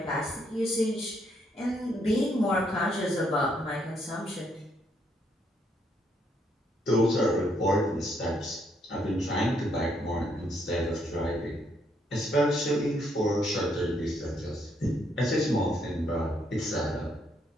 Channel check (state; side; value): normal; both; correlation 0.73